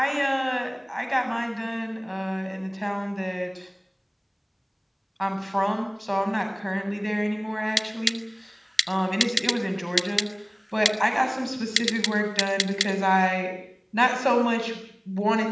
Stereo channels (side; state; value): both; identical; correlation 1.00